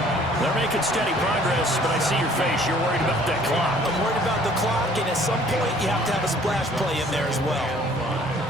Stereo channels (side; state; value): both; normal; correlation 0.56